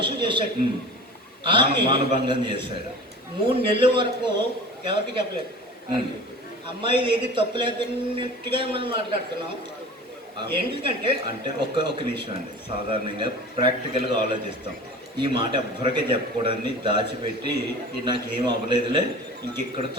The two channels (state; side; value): normal; both; correlation 0.38